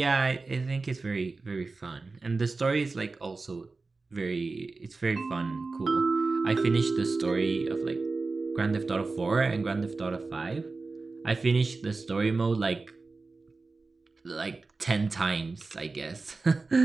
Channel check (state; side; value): quieter; left; 3.8 dB